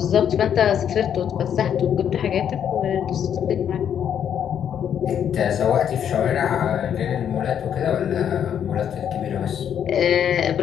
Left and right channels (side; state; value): right; quieter; 8.9 dB